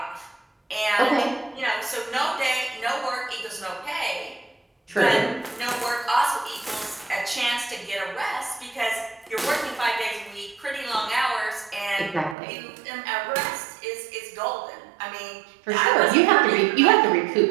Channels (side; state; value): left; drops out; at 12.4 s